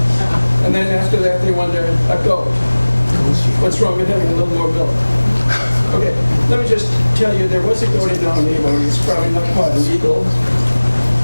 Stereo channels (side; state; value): both; inverted; correlation -1.00